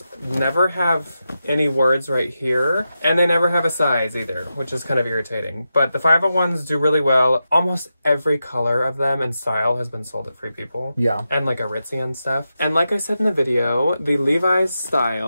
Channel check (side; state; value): both; inverted; correlation -0.89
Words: never have any words right here, and they never have a size either, which is kind of irritating. But the 501s do really well. Almost every color of them and style has been sold at Free People. Yeah. And like Aritzia and stuff. And like I said in the video, the Levi's